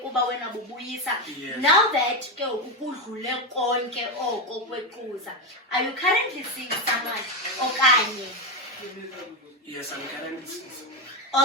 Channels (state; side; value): normal; both; correlation 0.09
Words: wena bubuyisa. Now that ke ukudlule konke oko kwequza, are you currently seeing someone okanye? Yes, I'm currently seeing